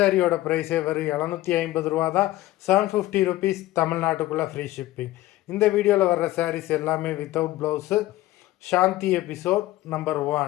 ப்ரைஸே வெறும் 750 தான். 750 ருபீஸ் தமிழ்நாட்டுக்குள்ளே ஃப்ரீ ஷிப்பிங். இந்த வீடியோவில் வர்ற சாரீஸ் எல்லாமே வித்தவுட் ப்ளவுஸு. சாந்தி episode number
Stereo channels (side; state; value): right; quieter; 16.4 dB